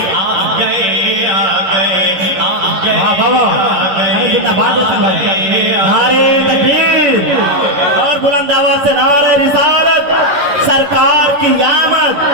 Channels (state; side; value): late; left; 10 ms